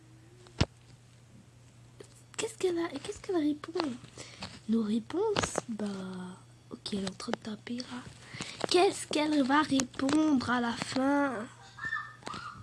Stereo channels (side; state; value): both; identical; correlation 1.00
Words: Qu'est-ce qu'elle répond? Nos réponses? Bah, ok, elle est en train de taper là. Qu'est-ce qu'elle va répondre à la fin?